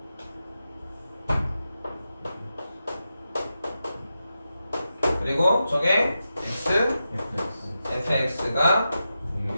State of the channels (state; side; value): inverted; both; correlation -0.89